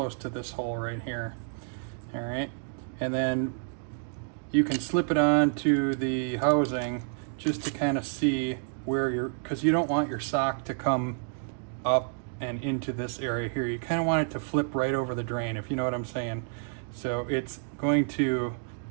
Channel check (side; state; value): left; silent; 58 dB below the other